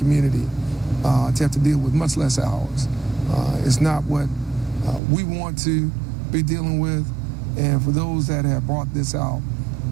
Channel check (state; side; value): drops out; left; at 5.0 s